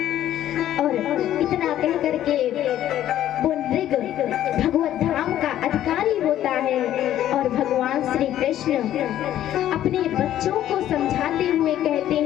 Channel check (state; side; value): quieter; right; 12.1 dB